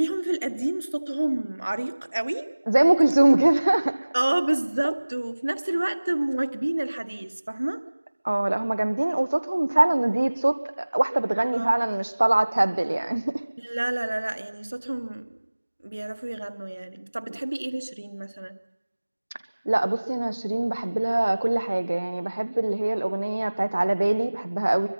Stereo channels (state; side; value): inverted; both; correlation -1.00